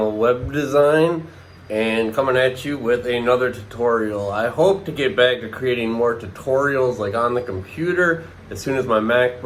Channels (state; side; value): identical; both; correlation 1.00